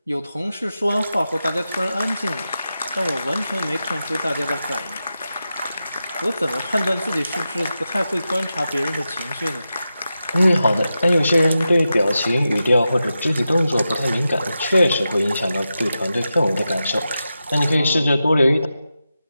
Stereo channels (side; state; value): both; inverted; correlation -0.90